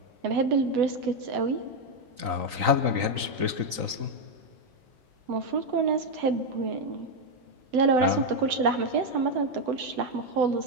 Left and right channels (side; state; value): left; late; 3.9 ms